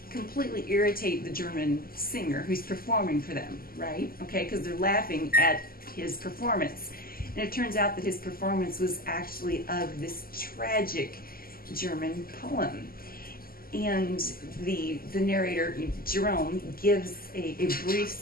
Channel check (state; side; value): late; right; 0.42 ms